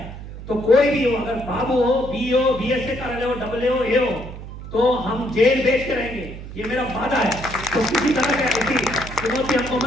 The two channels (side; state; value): right; noise; hum, 12 dB below the sound